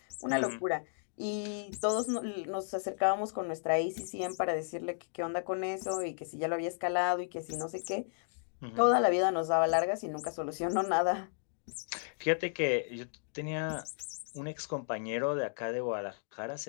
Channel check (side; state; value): right; silent; digital silence